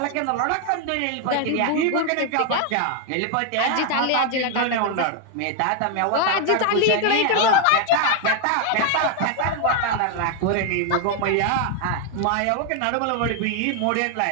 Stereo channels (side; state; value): both; different; correlation 0.00